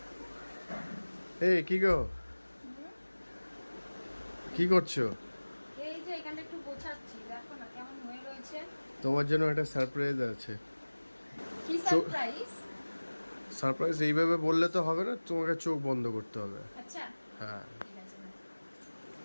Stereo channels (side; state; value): both; inverted; correlation -1.00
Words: এই কি গো, কি করছো? এই যে এখানটা একটু গোছাচ্ছি, দেখো না কেমন হয়ে রয়েছে। তোমার জন্য একটা সারপ্রাইজ আছে। কি সারপ্রাইজ? সারপ্রাইজ এইভাবে বললে তো হবে না, তোমাকে চোখ বন্ধ করতে হবে। আচ্ছা হ্যাঁ, ঠিক আছে না।